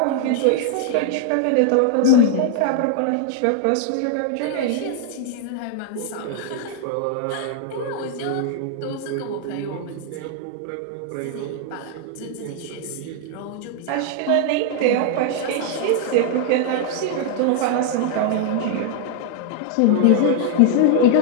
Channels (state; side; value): different; both; correlation 0.00